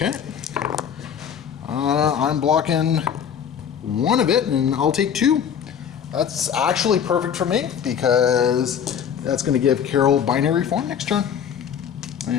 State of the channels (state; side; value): quieter; right; 8.1 dB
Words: I'm blocking 1 of it, and I'll take 2. That's actually perfect for me because that's going to give Carol binary form next turn,